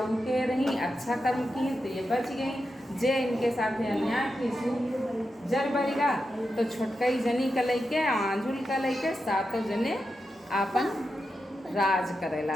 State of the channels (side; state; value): both; normal; correlation 0.88